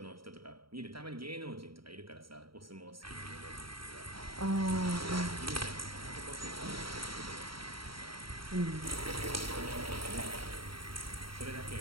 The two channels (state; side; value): late; left; 0.74 ms